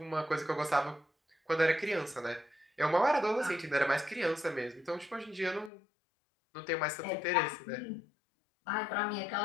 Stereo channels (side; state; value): right; drops out; at 5.7 s